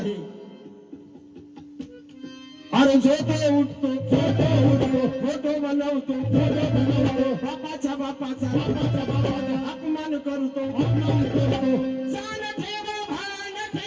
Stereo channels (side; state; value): both; identical; correlation 1.00